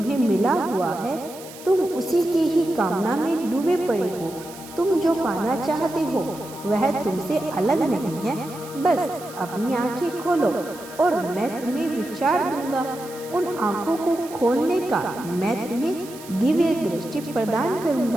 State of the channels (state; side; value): noise; right; hiss, 17 dB below the sound